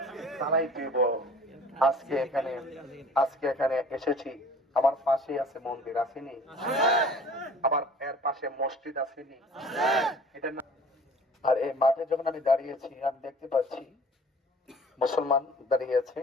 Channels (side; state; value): both; normal; correlation 0.47